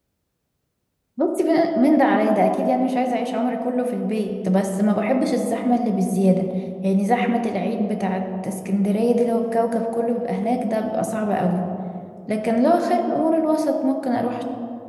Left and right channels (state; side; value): identical; both; correlation 1.00